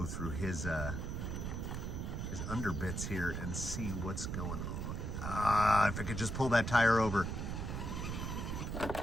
through his underbits here and see what's going on. If I could just pull that tire over.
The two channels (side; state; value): right; noise; rumble, 3 dB below the sound